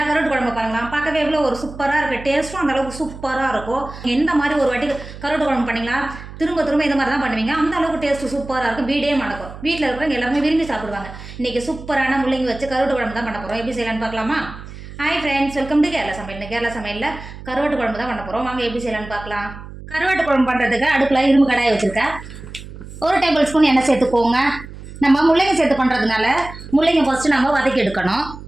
கருவாட்டு குழம்பு பாருங்களா, பார்க்கவே எவ்வளோ ஒரு சூப்பராக இருக்குது. டேஸ்ட்டும் அந்த அளவுக்கு சூப்பராக இருக்கும். எந்த மாதிரி ஒரு வாட்டி கருவாட்டு குழம்பு பண்ணிங்களா திரும்ப திரும்ப இந்த மாதிரி தான் பண்ணுவீங்க. அந்த அளவுக்கு டேஸ்ட்டு சூப்பராக இருக்கும். வீடே மணக்கும். வீட்டில் இருக்கிறவங்க எல்லாருமே விரும்பி சாப்பிடுவாங்க. இன்றைக்கி சூப்பரான முள்ளங்கி வச்சு கருவாட்டு குழம்பு தான் பண்ண போகிறோம். எப்படி செய்யலான்னு பார்க்கலாமா? Hi friends, welcome to Kerala சமையல். கேரளா சமையலில் கருவாட்டு குழம்பு தான் பண்ண போகிறோம். வாங்க எப்படி செய்யலான்னு பார்க்கலாம். கருவாட்டு குழம்பு பண்ணுறதுக்கு அடுப்பில் இரும்பு கடாயை வச்சுருக்கேன். 1 டேபிள் ஸ்பூன் எண்ணெய் சேர்த்துக்கோங்க. நம்ம முள்ளங்கி சேர்த்து பண்ணுறதுனால முள்ளங்கி ஃபஸ்ட்டு நம்ம வதக்கி எடுக்கணும்.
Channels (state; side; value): noise; right; hum, 14 dB below the sound